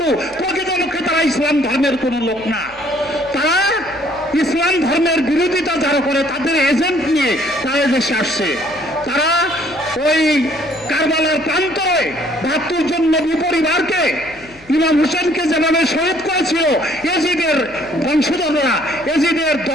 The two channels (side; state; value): left; noise; hum, 25 dB below the sound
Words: প্রকৃতপক্ষে তারা ইসলাম ধর্মের কোন লোক না। তারা ইসলাম ধর্মের বিরোধিতা যারা করে তাদের এজেন্ট নিয়ে তারা দেশে আসছে। তারা ওই কারবালার প্রান্তরে ৭২ জন নবী পরিবারকে, ইমাম হোসেনকে যেভাবে শহীদ করেছিল এজিদের বংশধররা, এজিদের